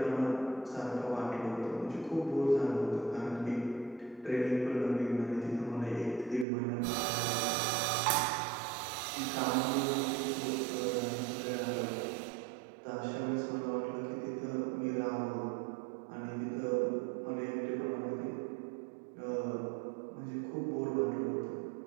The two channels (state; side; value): drops out; left; at 6.5 s